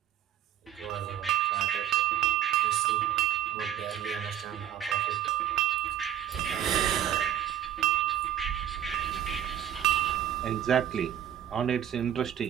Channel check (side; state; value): left; quieter; 10.8 dB